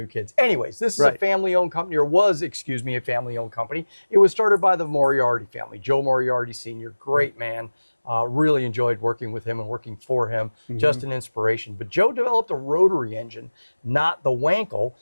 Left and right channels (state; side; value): inverted; both; correlation -1.00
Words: kids. Anyways, this is a family-owned company, or was, excuse me, a family-owned company. It was started by the Moriarty family, Joe Moriarty Sr., great man. Really enjoyed working with him and working for him, just an inspiration. But Joe developed a rotary engine, not the Wankel,